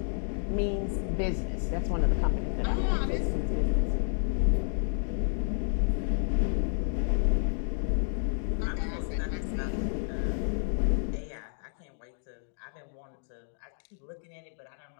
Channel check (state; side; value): silent; right; 58 dB below the other